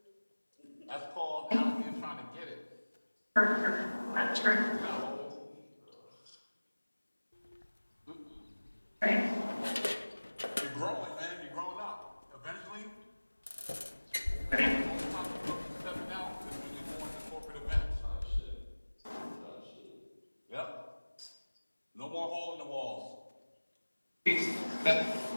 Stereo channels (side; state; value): both; inverted; correlation -1.00